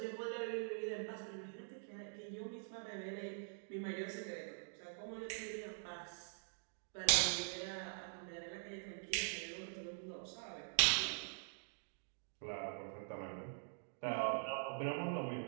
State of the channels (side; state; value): left; silent; digital silence